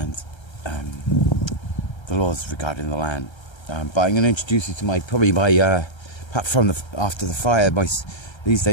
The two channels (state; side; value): late; right; 1.3 ms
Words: the laws regarding the land. But I'm going to introduce you to perhaps from after the fire, these